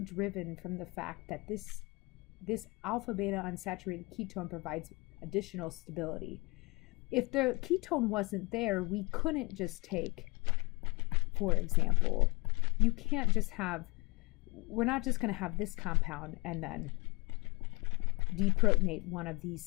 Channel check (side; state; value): right; quieter; 26.4 dB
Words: from the fact that this alpha beta unsaturated ketone provides additional stability. If the ketone wasn't there, we couldn't just take, for example, you can't just have, we're not just going to have this compound and then deprotonate one of these